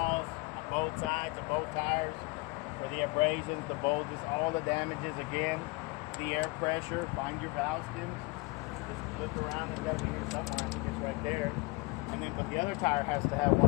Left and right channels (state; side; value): quieter; right; 26.5 dB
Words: on both sides of both tires for the abrasions, the bulges, all the damages again. The air pressure, find your valve skins. Just flip around, it's got to be here somewhere. It's right there. And then, but the other tire has to have